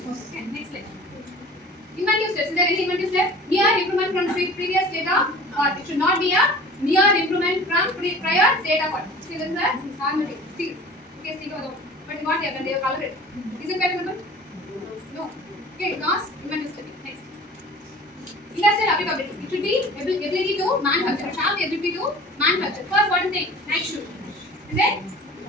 Okay, next slide. Inventive steps. Is there any inventive step? Near improvement from previous data, or it should not be a near improvement from prior data. What? See, this is a magnetic steel. Okay, steel over. But what they have done? They have colored it. Is it patent? No. Okay, because inventive step. Next. Industrial applicability. It should be ability to manufacture. It should have the ability to manufacture. First, what is the night shoe? And then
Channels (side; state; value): both; normal; correlation 0.43